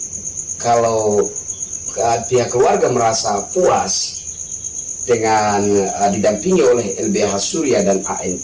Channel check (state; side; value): identical; both; correlation 1.00